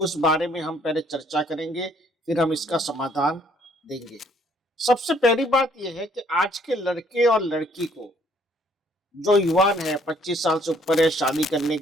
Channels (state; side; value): normal; both; correlation 0.64